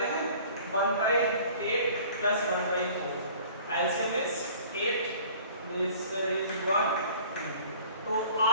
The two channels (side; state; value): both; inverted; correlation -0.49